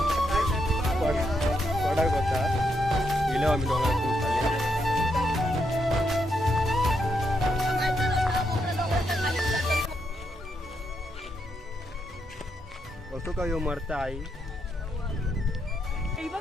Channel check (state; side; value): normal; both; correlation 0.80